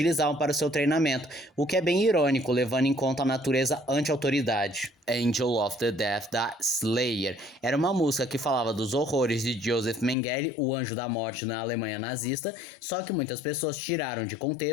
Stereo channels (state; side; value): drops out; right; at 10.2 s